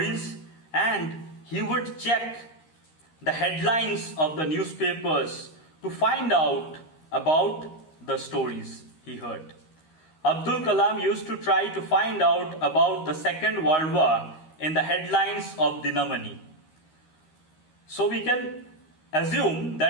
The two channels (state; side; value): late; right; 13 ms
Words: and he would check the headlines of the newspapers to find out about the stories he heard. Abdul Kalam used to try to find out about the Second World War in the headlines of Dinamani. So we can assume